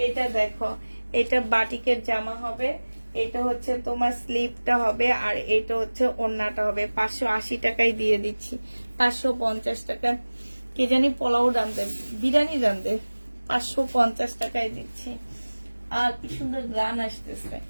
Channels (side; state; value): both; inverted; correlation -1.00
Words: এটা দেখো, এটা বাটিকের জামা হবে, এটা হচ্ছে তোমার স্লিপটা হবে, আর এটা হচ্ছে ওড়নাটা হবে। 580 টাকায় দিয়ে দিচ্ছি। 550 টাকা কে জানি পোলাও রান্ধে, বিরিয়ানি রান্ধে, 550 টাকায় দিচ্ছি। আর কি সুন্দর গ্রান আসতেছে,